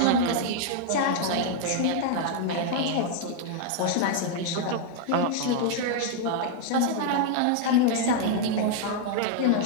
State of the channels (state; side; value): different; both; correlation 0.00